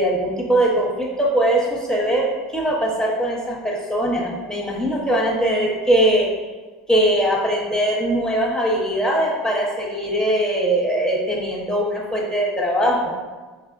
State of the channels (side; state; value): both; normal; correlation 0.43